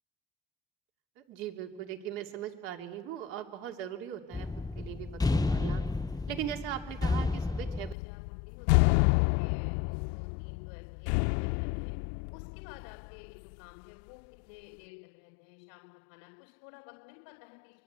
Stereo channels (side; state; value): right; drops out; at 8.0 s